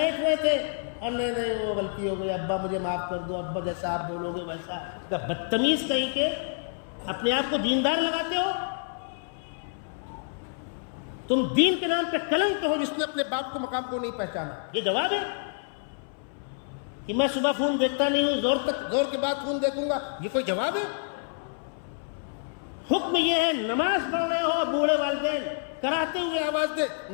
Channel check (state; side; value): silent; right; 59 dB below the other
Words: ہوئے تھے، اور نہیں وہ غلطی ہو گئی، ابا مجھے معاف کر دو، ابا جیسا آپ بولو گے ویسا۔ بدتمیز کہیں کے، اپنے آپ کو دیندار لگاتے ہو؟ تم دین کے نام پہ کلنک ہو جس نے اپنے باپ کو مقام کو نہیں پہچانا۔ یہ جواب ہے کہ میں صبح فون دیکھتا نہیں ہوں، زور کے بعد فون دیکھوں گا، یہ کوئی جواب ہے؟ حکم یہ ہے نماز پڑھ رہے ہو، بوڑھے والدین کراتے ہوئے آواز دے،